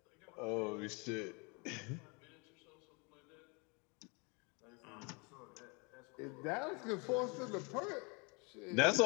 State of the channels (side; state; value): right; quieter; 31.3 dB